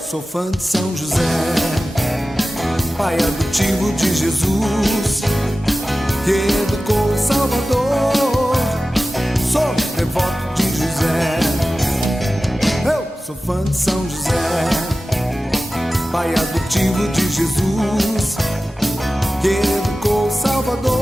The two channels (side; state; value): both; normal; correlation 0.95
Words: Sou fã de São José, pai adotivo de Jesus, que educou o Salvador. Sou devoto de José. Eu sou fã de São José, pai adotivo de Jesus, que educou o